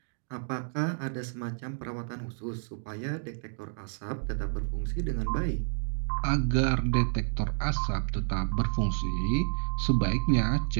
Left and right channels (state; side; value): silent; left; 58 dB below the other